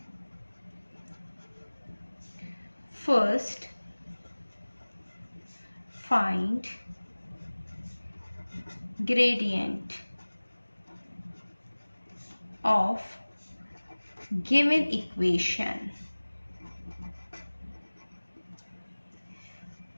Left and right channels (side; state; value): both; inverted; correlation -1.00